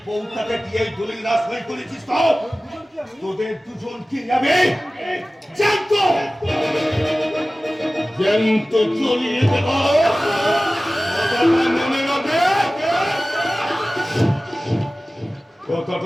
বউটাকে দিয়ে এই দলিল না সই করেছিস তো তোদের দুজনকে যাবে জ্যান্ত চলিয়ে দেব। মনে রাখবে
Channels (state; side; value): normal; both; correlation 0.97